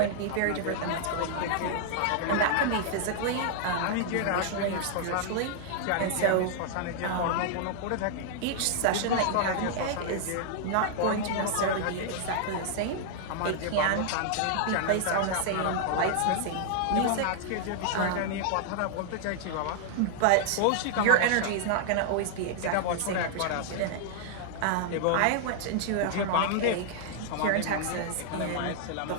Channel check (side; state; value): both; different; correlation -0.01